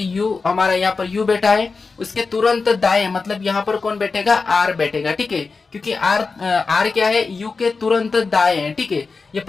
U, हमारा यहाँ पर U बैठा है, उसके तुरंत दाएं, मतलब यहाँ पर कौन बैठेगा, R बैठेगा, ठीक है। क्योंकि R क्या है, U के तुरंत दाएं है, ठीक है। ये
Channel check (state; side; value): quieter; right; 4.4 dB